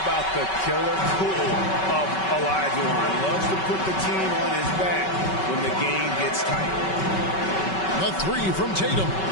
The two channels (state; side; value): late; right; 5.3 ms